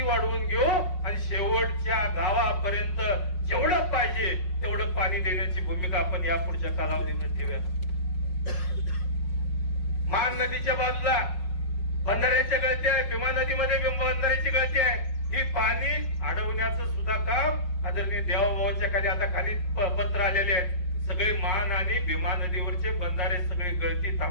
वाढवून घेऊ आणि शेवटच्या गावापर्यंत जेवढं पाहिजे तेवढं पाणी देण्याची भूमिका आपण या पुढच्या कालावधीमध्ये ठेवूया. मान नदीच्या बाजूला बंधाऱ्याच्या गळती आहे, भीमा नदीमध्ये बंधाऱ्याची गळती आहे. ही पाणी अडवण्याचं सुद्धा काम आदरणीय देवाभाऊच्या खाली आता खाली पत्र आलेले आहेत. सगळे मान आणि भीमा नदीवरचे बंधारे सगळे गळती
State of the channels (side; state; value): right; late; 5.5 ms